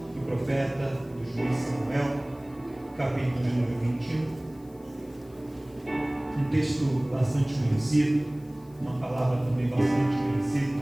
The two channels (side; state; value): left; noise; hiss, 29 dB below the sound